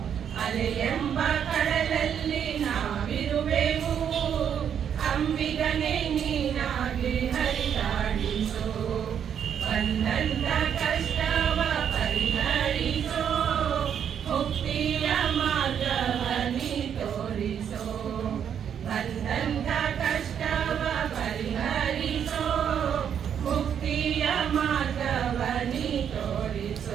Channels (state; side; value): quieter; left; 8.5 dB